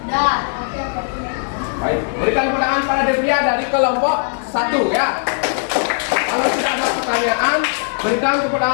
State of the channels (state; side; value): silent; right; 67 dB below the other